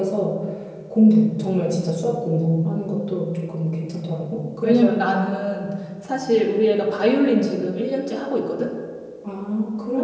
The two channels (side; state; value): both; identical; correlation 1.00